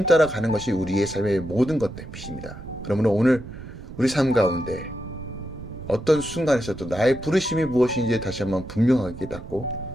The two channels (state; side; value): noise; right; rumble, 13 dB below the sound